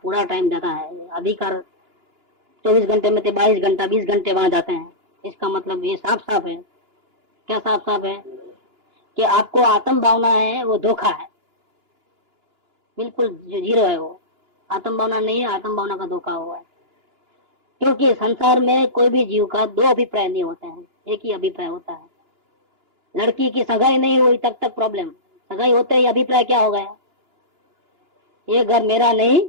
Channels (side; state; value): left; late; 2.9 ms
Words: टाइम जाता है, अधिकार 24 घंटे में से 22 घंटा 20 घंटे वहां जाते हैं, इसका मतलब ये साफ साफ है। क्या साफ साफ है कि आपको आत्म भावना है वो धोखा है, बिल्कुल जीरो है वो। आत्म भावना नहीं है, आत्म भावना का धोखा हुआ है। क्योंकि संसार में कोई भी जीव का दो अभिप्राय नहीं होते हैं, एक ही अभिप्राय होता है। लड़की की सगाई नहीं हुई तब तक प्रॉब्लम, सगाई होते ही अभिप्राय क्या हो गया, ये घर मेरा नहीं